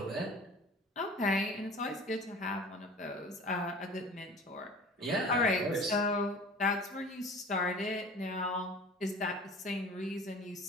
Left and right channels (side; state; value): both; normal; correlation 0.42